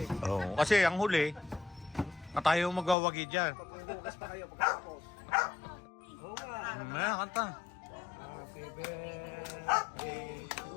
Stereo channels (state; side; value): drops out; right; at 3.0 s